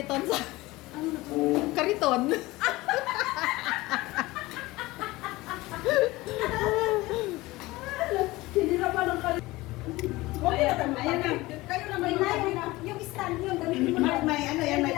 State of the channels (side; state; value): right; quieter; 19.9 dB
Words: sa... Kariton. Sinira pa ng kali. Ayan na. Kayo na may yung stand yun. Gamitin mo na. May ano yan, may